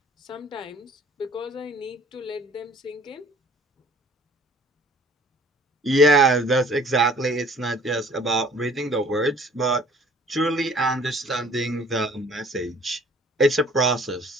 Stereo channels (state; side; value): normal; both; correlation 0.53